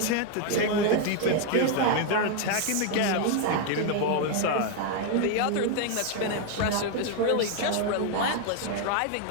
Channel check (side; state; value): both; different; correlation 0.01